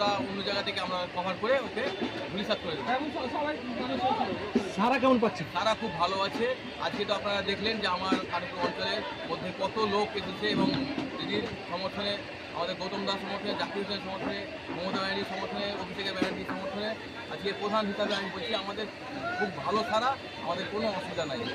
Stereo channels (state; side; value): identical; both; correlation 1.00